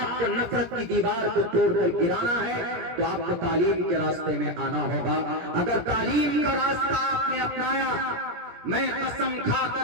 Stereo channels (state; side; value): late; left; 17 ms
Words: کو نفرت کی دیوار کو توڑ کر گرانا ہے تو آپ کو تعلیم کے راستے میں آنا ہوگا. اگر تعلیم کا راستہ آپ نے اپنایا، میں قسم کھا